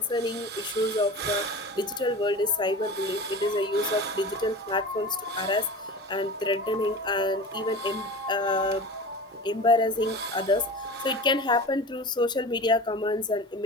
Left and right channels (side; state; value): both; normal; correlation 0.34